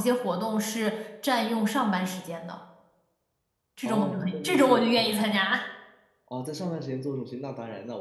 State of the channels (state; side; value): identical; both; correlation 1.00